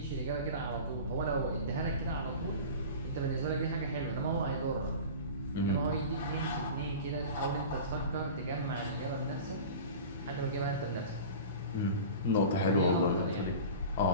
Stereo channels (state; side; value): inverted; both; correlation -0.35